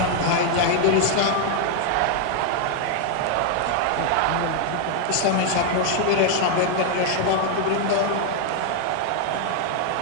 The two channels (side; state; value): both; different; correlation 0.00